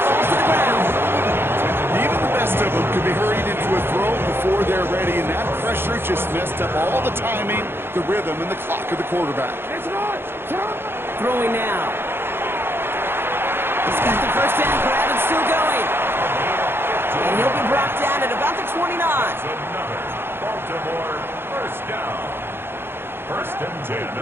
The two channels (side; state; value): left; late; 0.11 ms